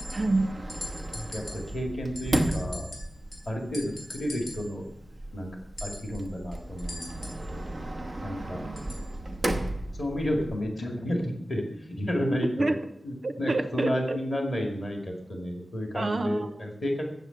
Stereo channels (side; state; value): both; normal; correlation 0.94